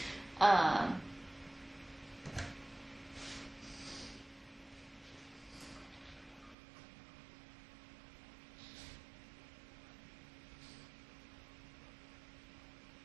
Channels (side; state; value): left; drops out; at 6.6 s